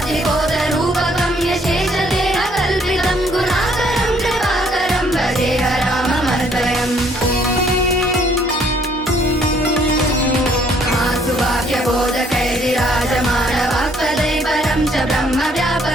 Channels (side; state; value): both; normal; correlation 0.64